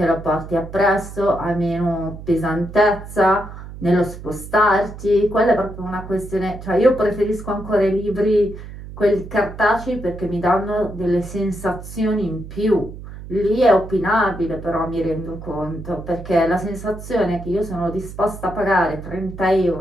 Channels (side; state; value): right; noise; hum, 13 dB below the sound